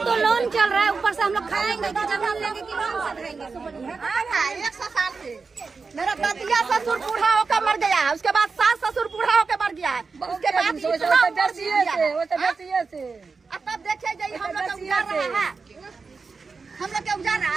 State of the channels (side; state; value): left; quieter; 4.6 dB